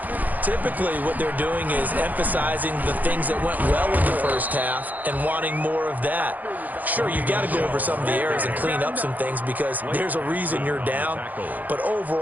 Typically, what they're doing is emphasizing the things that went well in the first half and wanting more of that. Sure, you've got to go over some of the errors and clean up some things because there's a reason you're down. But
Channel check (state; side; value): late; left; 0.082 ms